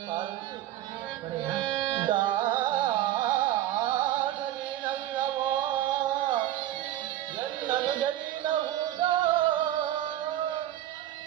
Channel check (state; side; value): quieter; left; 13.2 dB